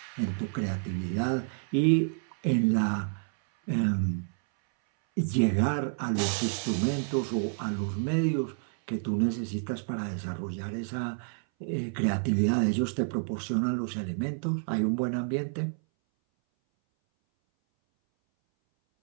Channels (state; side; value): silent; left; 58 dB below the other